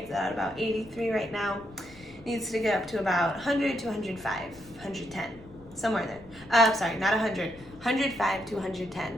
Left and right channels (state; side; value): noise; left; rumble, 22 dB below the sound